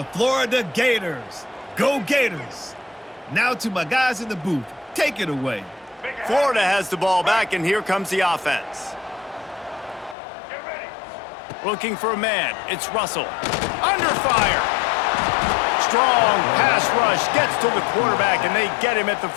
Florida Gators. Go Gators! Now to my guys in the booth. Take it away. Florida has the ball back, and here comes the offense. Looking for a man. It's Russell. Under fire. Strong pass rush gets to the quarterback, and they get him at the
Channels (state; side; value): drops out; right; at 10.2 s